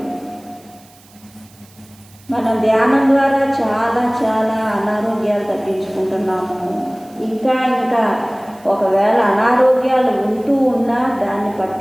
మనం ధ్యానం ద్వారా చాలా చాలా అనారోగ్యాలు తగ్గించుకుంటున్నాము. ఇంకా ఇంకా ఒకవేళ అనారోగ్యాలు ఉంటూ ఉన్నా దాన్ని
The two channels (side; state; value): right; noise; hiss, 27 dB below the sound